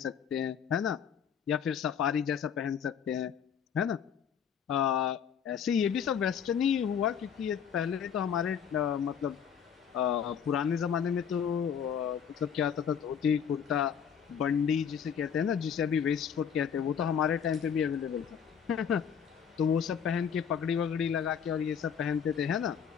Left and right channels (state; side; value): quieter; right; 7.7 dB